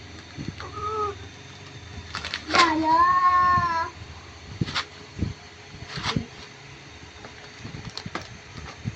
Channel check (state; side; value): identical; both; correlation 1.00